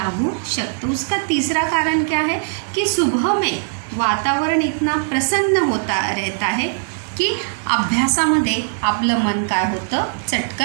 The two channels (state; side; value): silent; left; 59 dB below the other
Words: शकतं. उसका तीसरा कारण क्या है कि सुबह में वातावरण इतना प्रसन्न होता रहता है की अभ्यासामध्ये आपलं मन काय होतं?